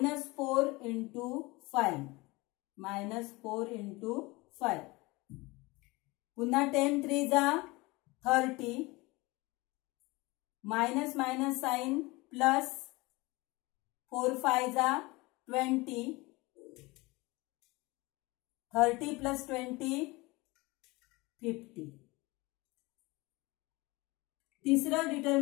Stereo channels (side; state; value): right; quieter; 23.1 dB